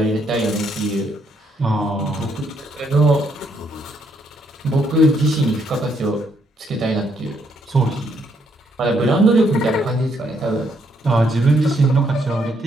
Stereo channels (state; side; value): normal; both; correlation 0.73